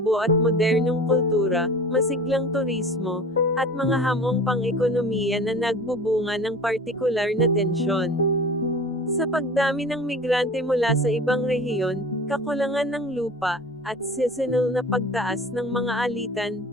at modernong kultura, masiglang turismo, at mga hamong pang-ekonomiya na nagbubunga ng partikular na tensyon. Sa pagdami ng migrante mula sa ibang rehiyon, kakulangan ng lupa, at seasonal na pagtaas ng mga alitan,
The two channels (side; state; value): both; normal; correlation 0.39